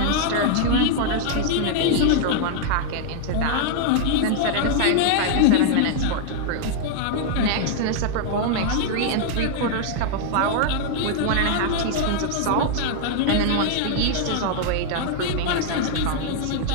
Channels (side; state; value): both; different; correlation 0.00